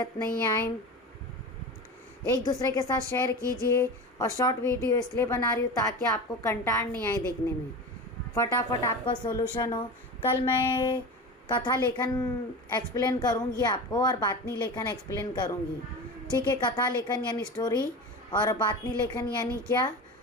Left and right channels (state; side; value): normal; both; correlation 0.29